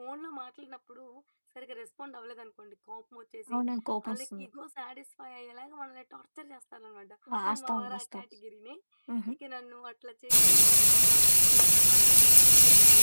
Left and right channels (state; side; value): inverted; both; correlation -1.00